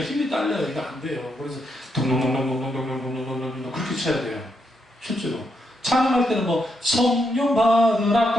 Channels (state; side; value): normal; both; correlation 0.80